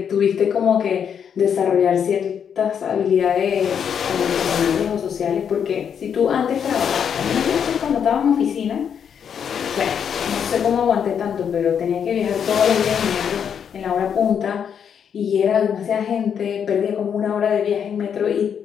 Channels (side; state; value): right; quieter; 7.8 dB